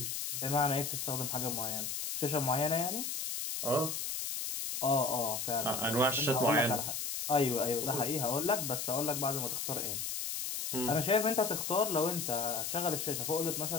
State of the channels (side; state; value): left; noise; hiss, 3 dB below the sound